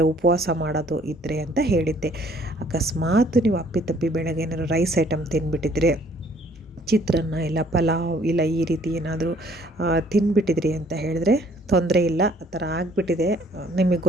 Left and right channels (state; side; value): normal; both; correlation 0.60